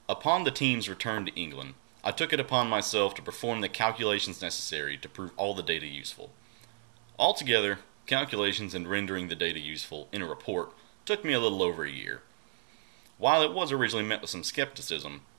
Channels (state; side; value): silent; left; 56 dB below the other